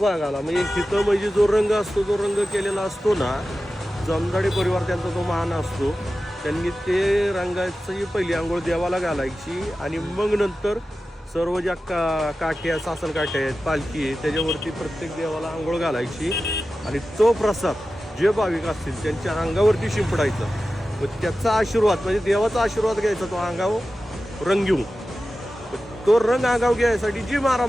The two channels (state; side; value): normal; both; correlation 0.94